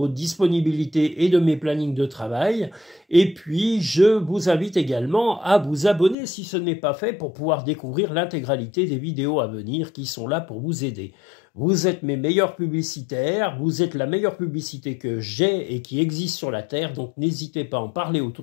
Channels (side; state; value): right; drops out; at 6.2 s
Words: disponibilités et de mes plannings de travail. Et puis, je vous invite également à vous abonner si ce n'est pas fait pour pouvoir découvrir l'intégralité des vidéos à venir qui sont là pour vous aider. Vous êtes mes meilleurs publicitaires, vous êtes la meilleure publicité que j'ai et qui existe sur la Terre, donc n'hésitez pas à en parler